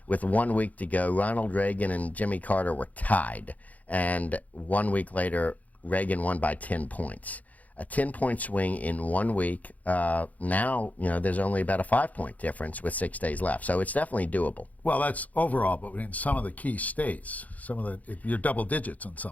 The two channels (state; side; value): late; right; 0.075 ms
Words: with 1 week to go, Ronald Reagan and Jimmy Carter were tied, and 1 week later, Reagan won by 10 points. A 10-point swing in 1 week. Now, you know, there's only about a 5-point difference with 6 days left, so it's definitely doable. Well, that's overall, but in some of the key states, you're double digits on some